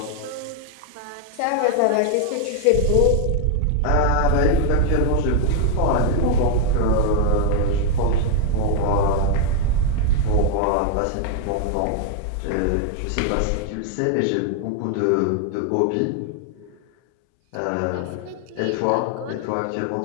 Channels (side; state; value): both; different; correlation 0.01